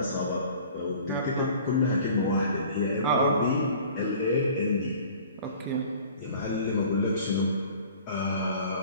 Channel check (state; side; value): inverted; both; correlation -0.47